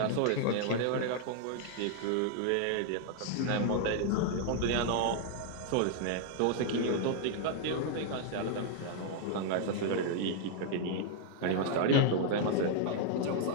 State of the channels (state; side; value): different; both; correlation 0.00